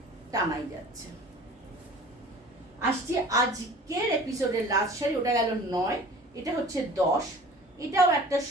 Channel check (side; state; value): both; normal; correlation 0.44